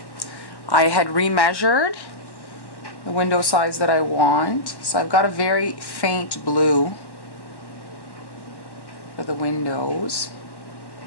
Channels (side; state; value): right; late; 1.1 ms